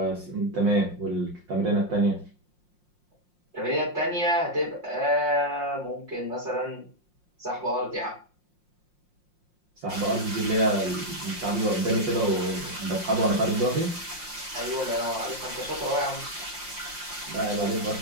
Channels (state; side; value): late; left; 5.6 ms